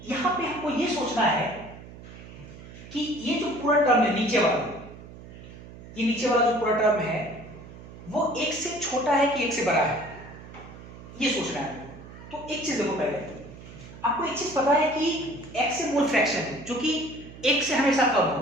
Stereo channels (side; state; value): right; noise; hum, 16 dB below the sound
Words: यहां पे हमको ये सोचना है कि ये जो पूरा टर्म है नीचे वाला, ये नीचे वाला जो पूरा टर्म है वो 1 से छोटा है कि 1 से बड़ा है, ये सोचना है आपको। तो एक चीज देखो, पहले आपको एक चीज पता है कि x से मोल फ्रैक्शन है जो कि 1 से हमेशा कम